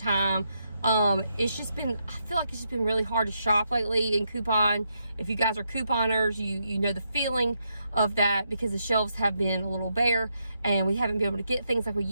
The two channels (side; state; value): both; inverted; correlation -0.81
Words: It's just been, I feel like it's just been really hard to shop lately and coupon. If you guys are couponers, you know the feeling of that because the shelves have been a little bare and we haven't been able to get things like we